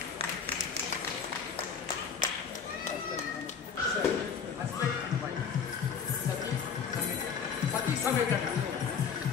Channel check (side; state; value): right; quieter; 6.5 dB